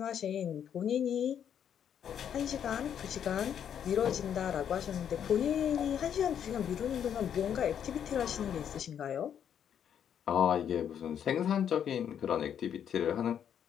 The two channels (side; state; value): right; quieter; 8.9 dB